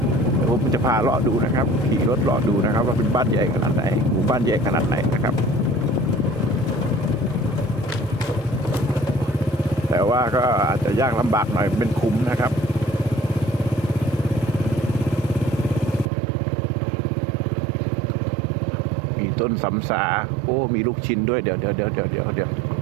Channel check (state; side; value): drops out; left; at 16.1 s